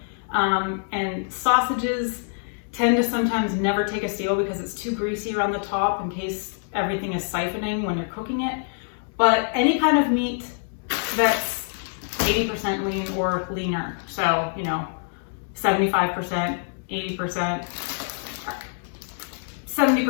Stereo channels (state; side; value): silent; right; digital silence